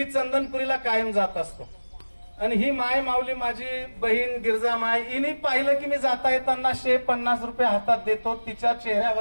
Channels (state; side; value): inverted; both; correlation -1.00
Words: चंदनपुरीला कायम जात असतो आणि ही माय माऊली माझी बहीण गिरजा माय हिने पाहिलं की मी जाता येताना 150 रुपये हातात देतो. तिच्या